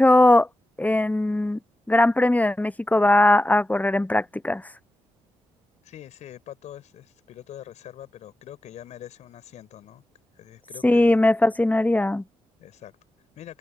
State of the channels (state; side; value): normal; both; correlation 0.93